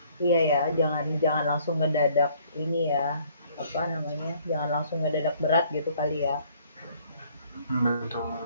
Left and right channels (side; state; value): both; inverted; correlation -0.61